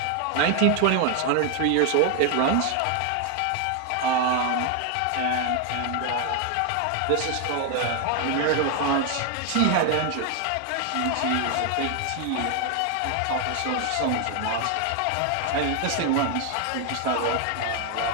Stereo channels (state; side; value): different; both; correlation 0.01